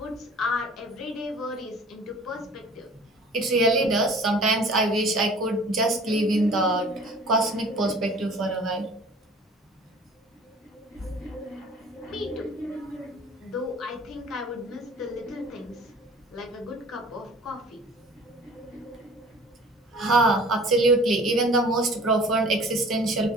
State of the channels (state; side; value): normal; both; correlation 0.47